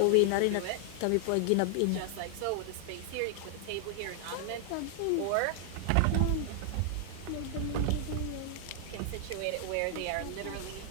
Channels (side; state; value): both; different; correlation 0.00